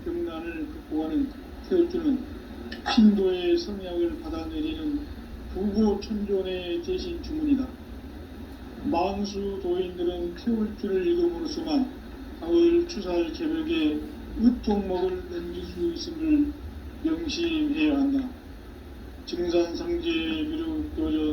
병난을 극복하는 태울주는 신도의 성약을 받아내리는 부고천존의 대신 주문이다. 만수 도인들은 태울주를 읽음으로써만 가을 추살 개벽의 의통목을 넘길 수 있음을 명심해야 한다. 증산상제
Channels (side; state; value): both; identical; correlation 1.00